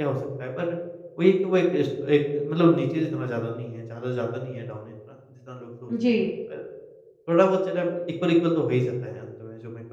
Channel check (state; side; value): identical; both; correlation 1.00